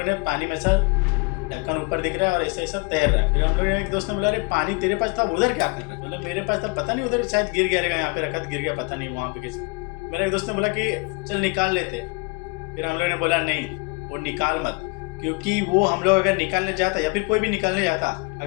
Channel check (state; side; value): quieter; right; 29.8 dB